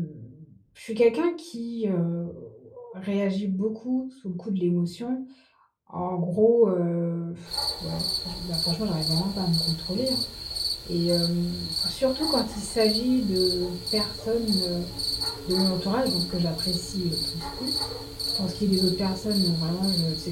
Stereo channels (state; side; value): identical; both; correlation 1.00